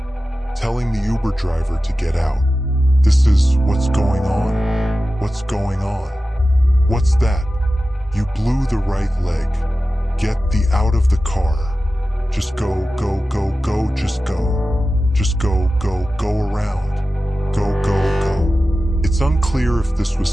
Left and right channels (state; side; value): normal; both; correlation 0.94